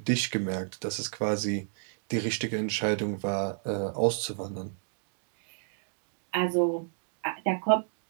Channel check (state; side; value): silent; left; digital silence